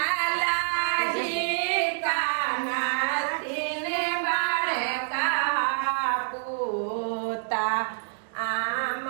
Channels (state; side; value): silent; left; digital silence